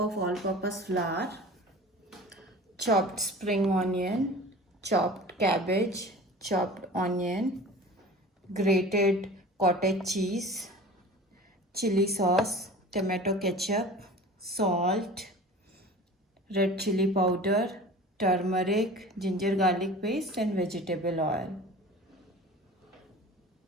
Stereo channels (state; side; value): normal; both; correlation 0.39